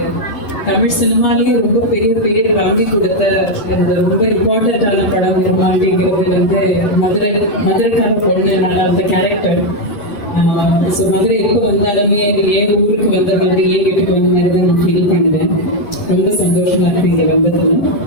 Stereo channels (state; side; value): late; right; 9.9 ms